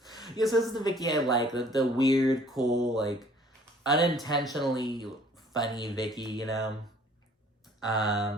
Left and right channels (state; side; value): normal; both; correlation 0.55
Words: So this is the Vicki I like. The weird, cool, like, unintentionally funny Vicki,